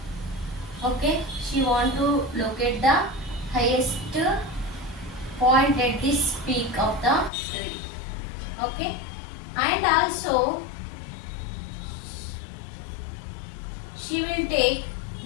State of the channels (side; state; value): right; drops out; at 7.3 s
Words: Okay, she want to locate the highest point at this peak of the tree. Okay, and also she will take